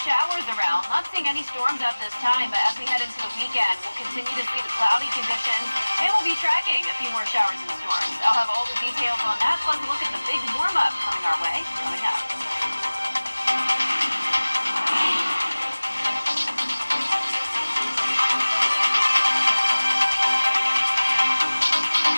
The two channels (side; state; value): both; inverted; correlation -1.00